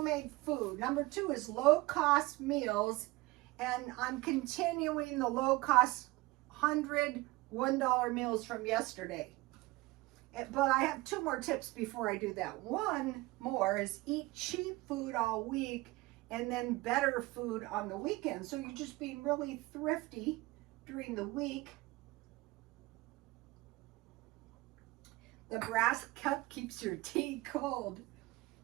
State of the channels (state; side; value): quieter; left; 20.9 dB